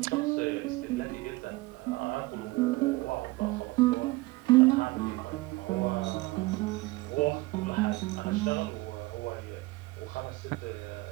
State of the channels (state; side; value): quieter; left; 21.8 dB